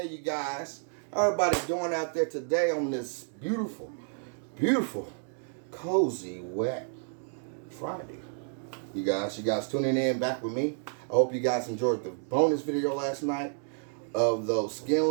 you guys. How everybody doing out there today on this beautiful, cozy, wet Friday? You guys tuning in back with me. I hope you guys enjoyed the bonus video last night of those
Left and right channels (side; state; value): left; silent; 58 dB below the other